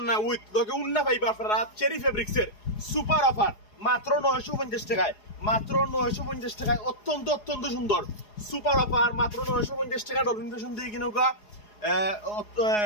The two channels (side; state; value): right; late; 4.8 ms